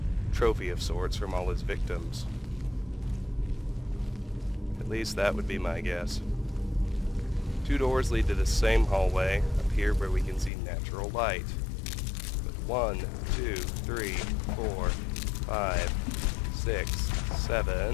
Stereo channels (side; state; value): right; drops out; at 10.5 s